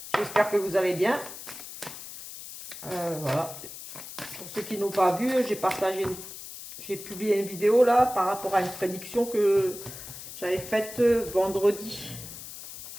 J'espère que vous allez bien. Voilà. Pour ceux qui n'ont pas vu, j'ai publié une vidéo là par rapport à une prédiction que j'avais faite vendredi.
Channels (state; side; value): noise; left; hiss, 12 dB below the sound